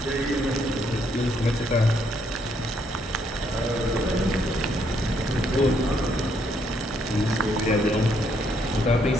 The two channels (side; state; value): both; normal; correlation 0.72